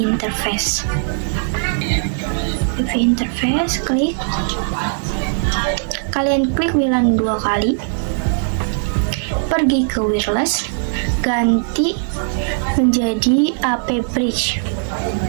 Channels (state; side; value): silent; left; 56 dB below the other